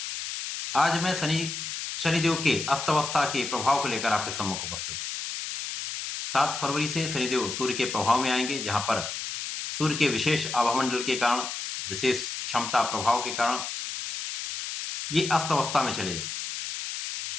आज मैं शनिदेव के अस्त अवस्था के प्रभाव को लेकर आपके सम्मुख उपस्थित हूं। 7 फरवरी से शनिदेव सूर्य के प्रभाव में आएंगे, जहां पर सूर्य के विशेष आभामंडल के कारण, विशेष क्षमता प्रभाव के कारण ये अस्त अवस्था में चले जाएंगे।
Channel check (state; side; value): noise; left; hiss, 5 dB below the sound